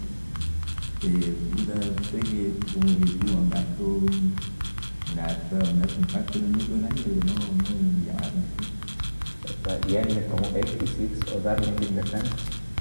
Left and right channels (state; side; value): inverted; both; correlation -1.00